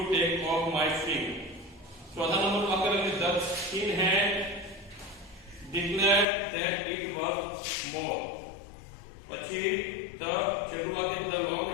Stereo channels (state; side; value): drops out; right; at 6.2 s